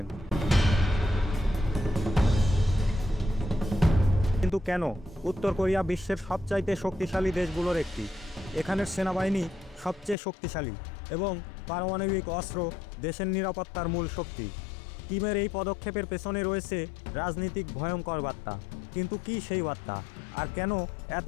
কিন্তু কেন? উত্তর কোরিয়া বিশ্বের সবচাইতে শক্তিশালী দেশগুলোর একটি। এখানের সেনাবাহিনী সবচেয়ে শক্তিশালী এবং পারমাণবিক অস্ত্র দেশের নিরাপত্তার মূল শক্তি। কিমের এই পদক্ষেপের পেছনে রয়েছে রাজনীতিক ভয়ঙ্কর বার্তা। কিন্তু কি সেই বার্তা? আর কেন এত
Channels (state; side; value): drops out; right; at 10.2 s